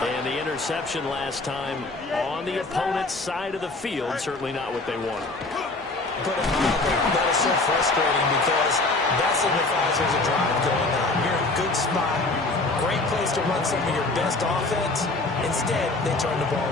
And the interception last time on the opponent's side of the field, certainly not what they wanted. Put it mildly, that is so frustrating because that signifies there's a drive going on. You're in a good spot, great place to run some of your best offense. Instead, they turn the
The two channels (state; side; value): quieter; right; 3.2 dB